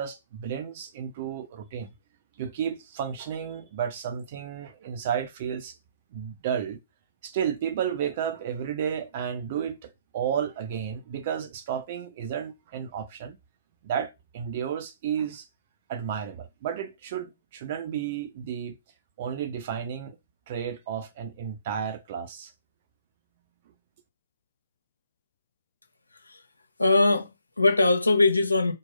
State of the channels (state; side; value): inverted; both; correlation -0.65